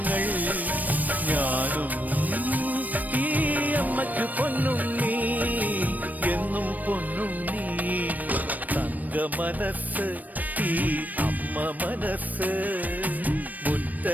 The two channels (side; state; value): left; late; 0.081 ms